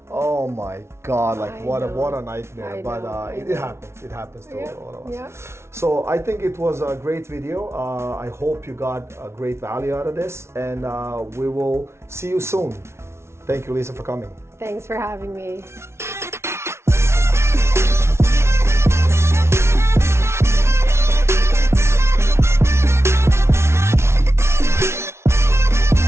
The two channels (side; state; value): left; late; 0.13 ms